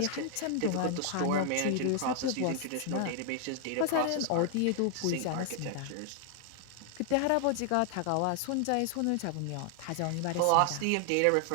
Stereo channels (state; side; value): different; both; correlation 0.00